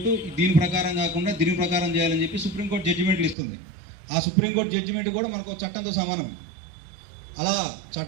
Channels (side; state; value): left; drops out; at 3.4 s